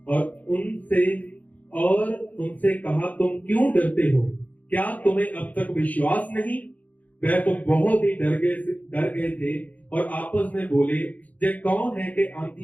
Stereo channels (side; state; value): right; late; 0.076 ms